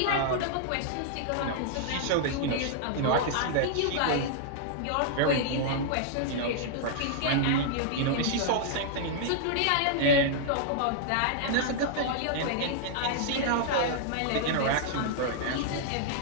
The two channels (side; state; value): both; different; correlation -0.01